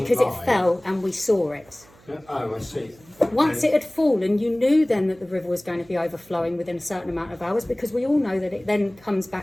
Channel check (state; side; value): noise; right; hum, 27 dB below the sound